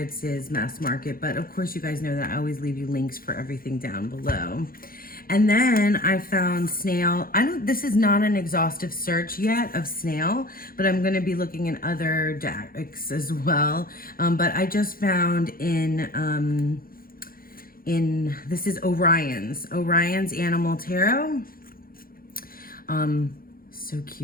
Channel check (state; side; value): late; right; 0.42 ms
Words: is mass market. But of course you guys know that I always leave you links for everything down below. And then I found Snail. This is not an exhaustive search yet of Snail, but I'm going to be looking in other decks as well. But I just found this is Orion's Animal Tarot. So